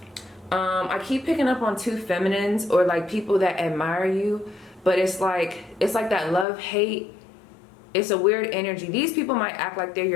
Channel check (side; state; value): right; drops out; at 6.5 s